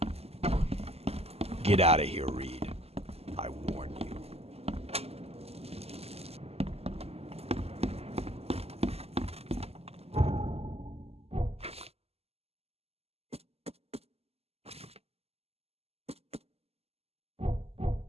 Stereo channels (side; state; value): left; late; 0.29 ms